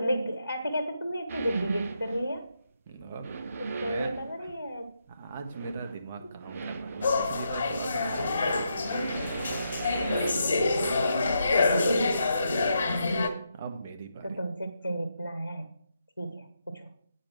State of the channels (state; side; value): inverted; both; correlation -0.81